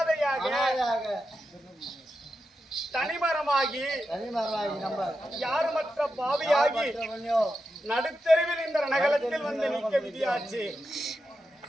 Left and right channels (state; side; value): normal; both; correlation 0.89